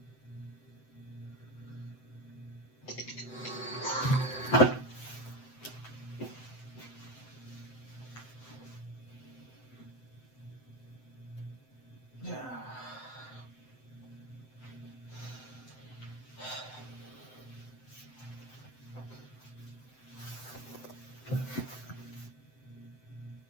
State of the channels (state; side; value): late; right; 7.8 ms